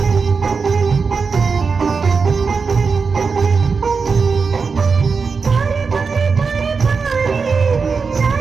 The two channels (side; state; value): left; quieter; 5.0 dB